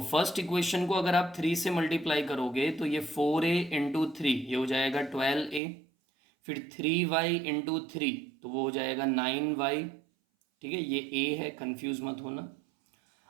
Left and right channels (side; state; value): left; drops out; at 5.6 s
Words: फर्स्ट इक्वेशन को अगर आप 3 से मल्टीप्लाई करोगे, तो ये 4a इंटू 3 ये हो जाएगा 12a। फिर 3y इंटू 3, तो वो हो जाएगा 9y। ठीक है, ये a है, कंफ्यूज मत होना।